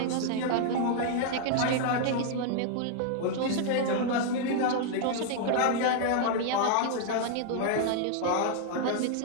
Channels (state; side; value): different; both; correlation -0.01